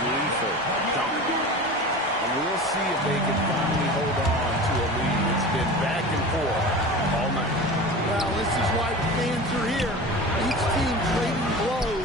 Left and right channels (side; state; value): both; normal; correlation 0.33